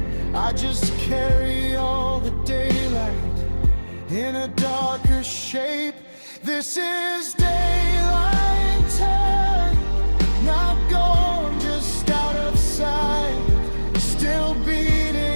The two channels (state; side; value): inverted; both; correlation -1.00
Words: I just carry all the daylight in a darker shape. This is daylight time, not gone, just out of sight. Still